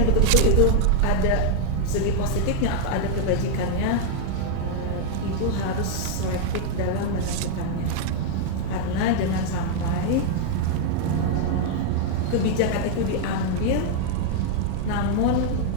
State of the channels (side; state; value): both; different; correlation 0.00